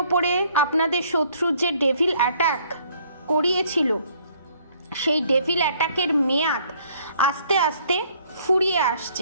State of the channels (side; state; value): both; inverted; correlation -0.62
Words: আপনাদের শত্রু যে ডেভিল অ্যাটাক করিয়েছিল, সেই ডেভিল অ্যাটাকের মেয়াদ আস্তে আস্তে ফুরিয়ে